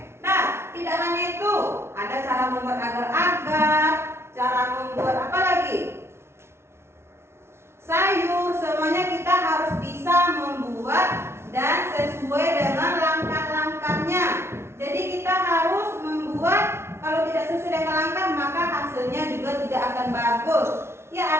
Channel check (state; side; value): late; left; 0.12 ms